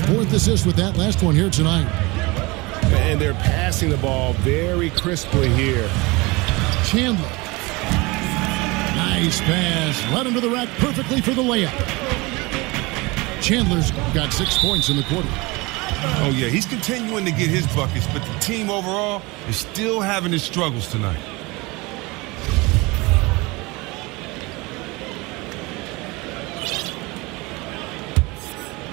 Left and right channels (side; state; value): left; quieter; 24.3 dB